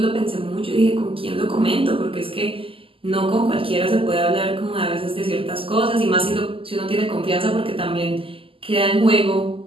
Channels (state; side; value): late; left; 0.26 ms